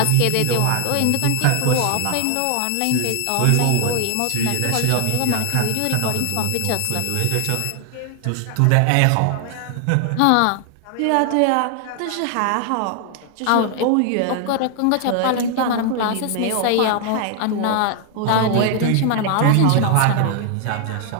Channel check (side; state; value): both; different; correlation 0.00